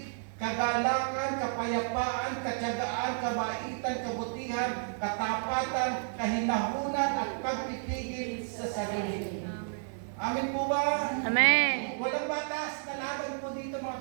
kagalakan, kapayapaan, katyagaan, kabaitan, kabutihan, katapatan, kahinahunan, at pagpipigil sa sarili. Amen po ba? Amen. Walang batas na laban po dito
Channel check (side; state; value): left; silent; 57 dB below the other